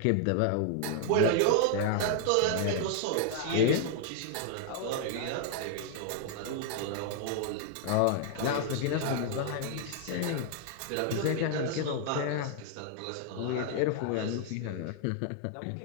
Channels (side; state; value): both; different; correlation 0.00